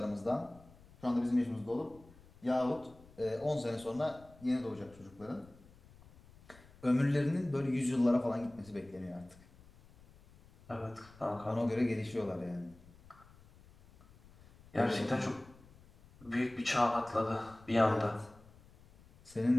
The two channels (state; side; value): noise; left; rumble, 24 dB below the sound